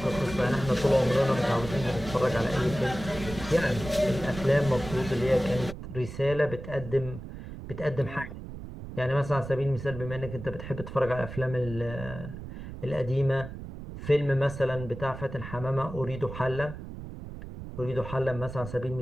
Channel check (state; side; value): noise; right; rumble, 11 dB below the sound